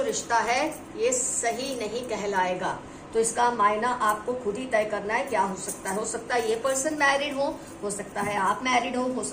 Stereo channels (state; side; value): identical; both; correlation 1.00